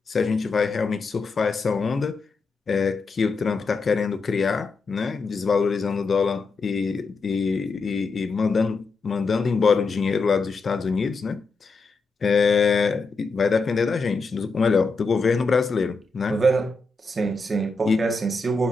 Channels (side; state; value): right; quieter; 3.8 dB